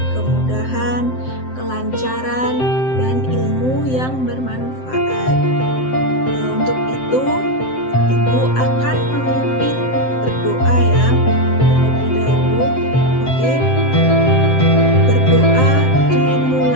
kemudahan, kelancaran, dan ilmu yang bermanfaat. Untuk itu, Ibu akan memimpin berdoa ya terlebih dahulu. Oke, berdoa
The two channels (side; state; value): right; late; 7.7 ms